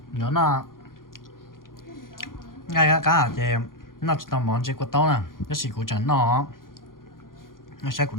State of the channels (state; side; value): late; right; 0.91 ms